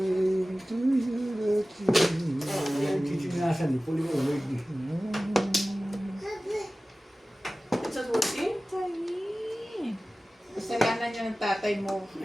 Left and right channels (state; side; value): normal; both; correlation 0.97